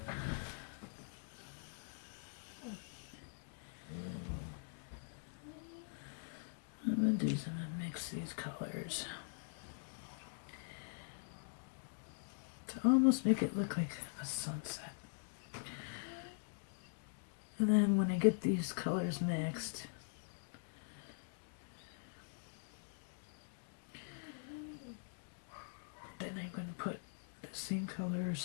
What I'm gonna do is I'm gonna mix these colors to almost make it look like a sunset. And then when I get these colors mixed, then I'm going to put the same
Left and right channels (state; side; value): silent; right; digital silence